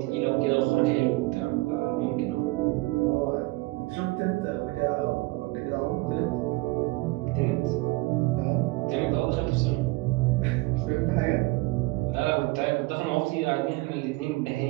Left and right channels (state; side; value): quieter; left; 22.5 dB